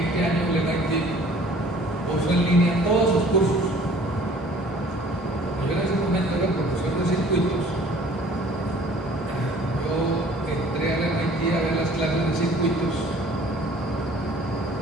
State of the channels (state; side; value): normal; both; correlation 0.51